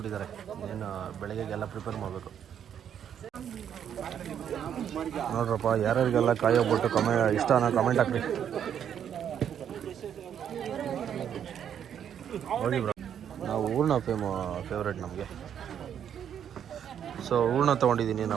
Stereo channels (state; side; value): quieter; left; 9.0 dB